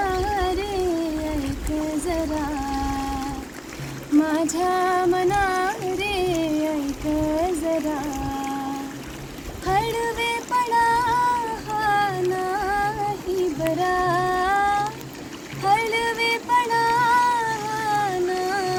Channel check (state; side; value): identical; both; correlation 1.00